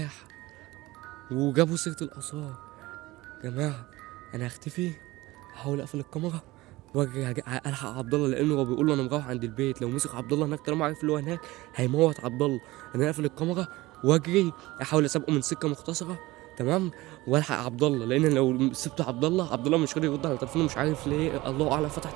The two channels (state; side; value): quieter; left; 19.6 dB